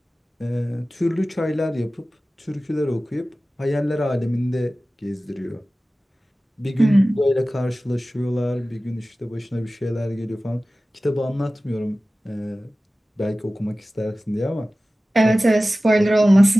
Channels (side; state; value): both; normal; correlation 0.96